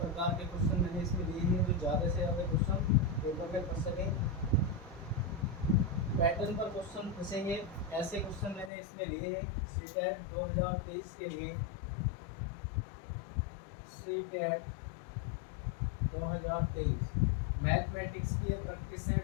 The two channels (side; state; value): right; drops out; at 8.7 s